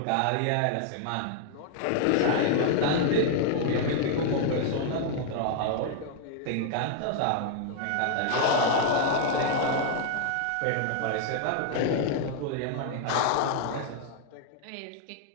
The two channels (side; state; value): both; different; correlation 0.00